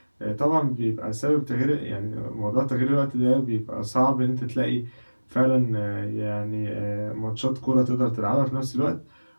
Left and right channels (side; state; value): both; inverted; correlation -1.00